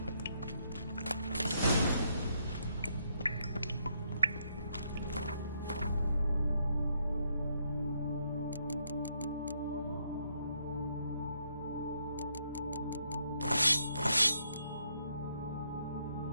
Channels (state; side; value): inverted; both; correlation -0.74